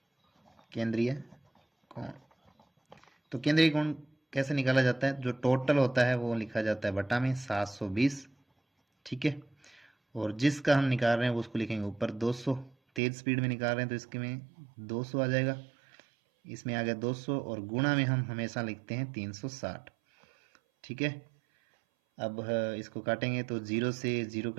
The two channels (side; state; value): left; drops out; at 13.0 s